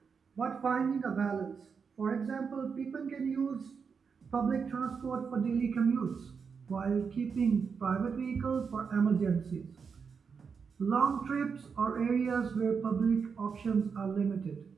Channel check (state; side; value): quieter; left; 5.9 dB